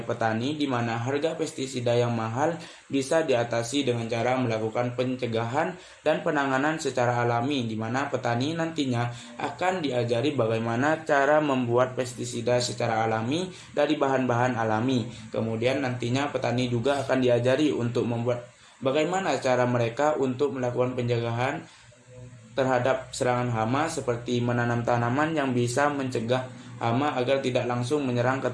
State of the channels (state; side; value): identical; both; correlation 1.00